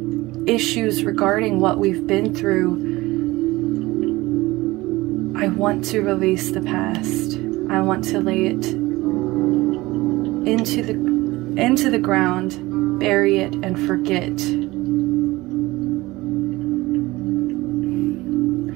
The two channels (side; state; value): left; quieter; 19.8 dB